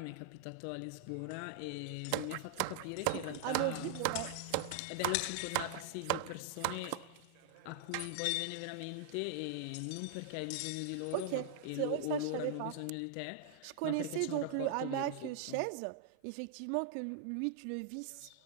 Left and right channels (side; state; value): both; different; correlation -0.01